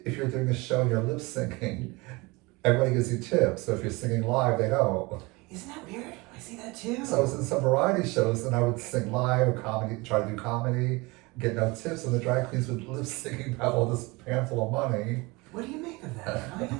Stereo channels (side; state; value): left; quieter; 24.5 dB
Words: if you're doing a show and you're lip syncing, everybody gives you tips. So if you're singing live, they don't. Isn't that weird? I see that too. So I was in some variety shows and I would sing live or comedy, try to do comedy, get no tips, and the drag queens would lip syncing have all this handful of money. What do you make of that? Why